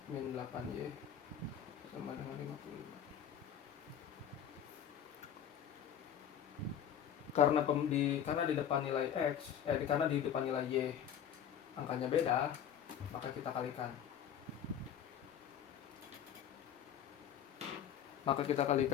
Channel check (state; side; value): quieter; right; 9.2 dB